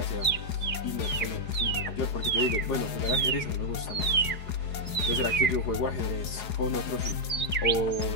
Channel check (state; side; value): late; right; 4.8 ms